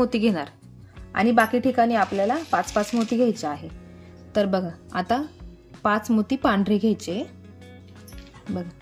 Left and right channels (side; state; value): both; identical; correlation 1.00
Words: घेणार आणि बाकी ठिकाणी आपल्याला 5-5 मोती घ्यायचे आहे। तर बघा आता 5 मोती पांढरे घ्यायचे। बघा